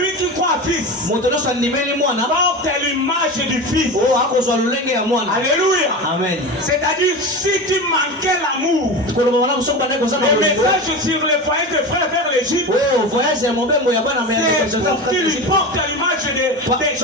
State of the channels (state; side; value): normal; both; correlation 0.26